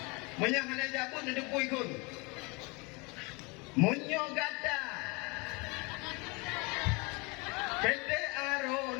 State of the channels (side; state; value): right; quieter; 27.4 dB